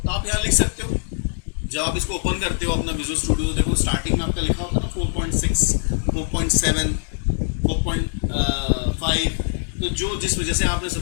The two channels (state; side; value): silent; right; digital silence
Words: आप यहाँ लिख सकते हो। जब आप इसको ओपन करते हो अपना विजुअल स्टूडियो, तो देखो स्टार्टिंग में आपका लिखा होता है ना 4.6, 4.7, 4.5। तो जो जिस वजह से आपने